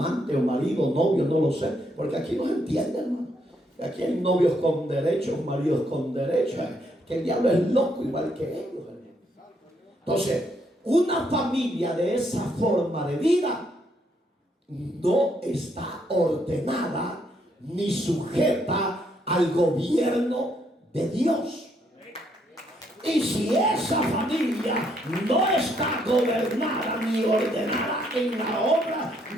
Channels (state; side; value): normal; both; correlation 0.73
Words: o marido, novio, no lo sé, porque aquí no se entiende, hermano. Aquí hay novios con derechos, maridos con derechos, que el diablo es loco igual que ellos. Entonces, una familia de esa forma de vida no está ordenada ni sujeta al gobierno de Dios. Y si esa familia no está gobernada ni ordenada en la obra